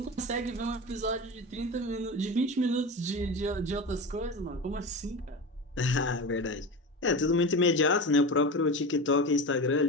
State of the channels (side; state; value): both; normal; correlation 0.27